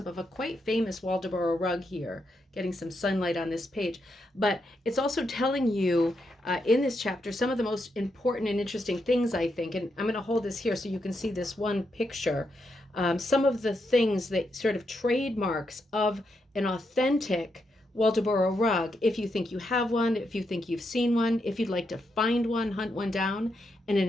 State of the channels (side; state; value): both; normal; correlation 0.82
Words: of a quite famous Waldoboro rug here, getting some sunlight on this page. But it's also telling you in this chapter some of the most important and interesting things, I think. And I'm going to hold this here so you can see this one picture. Some of the things that sort of trademarks of an authentic Waldoboro rug, if you think you have one, if you think you've seen one, if you'd like to find one, hunt one down in